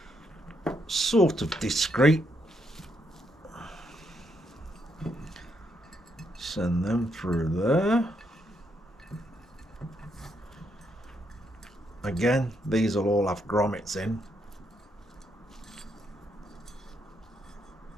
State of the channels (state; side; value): normal; both; correlation 0.77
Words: Sort of discreet. Send them through there. Again, these will all have grommets in.